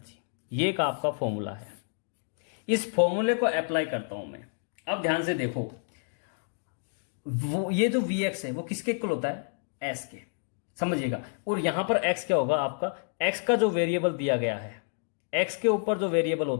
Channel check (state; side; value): silent; right; digital silence